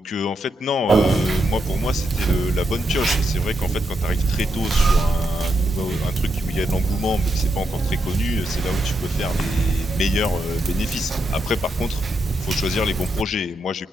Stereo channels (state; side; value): normal; both; correlation 0.83